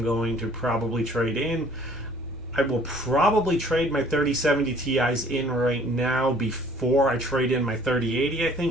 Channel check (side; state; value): both; normal; correlation 0.56